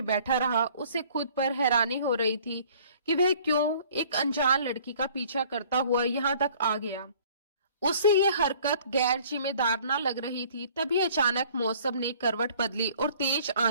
बैठा रहा। उसे खुद पर हैरानी हो रही थी कि वह क्यों एक अनजान लड़की का पीछा करता हुआ यहाँ तक आ गया। उसे यह हरकत गैर जिम्मेदार न लग रही थी। तभी अचानक मौसम ने करवट बदली और तेज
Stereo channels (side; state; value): both; inverted; correlation -0.54